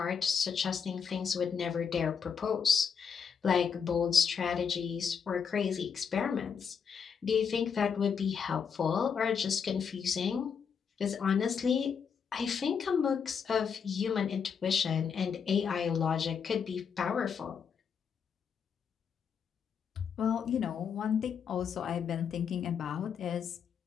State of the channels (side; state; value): right; quieter; 6.7 dB